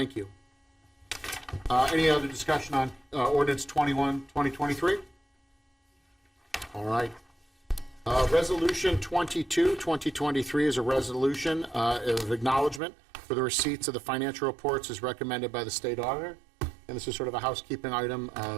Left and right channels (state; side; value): drops out; left; at 12.8 s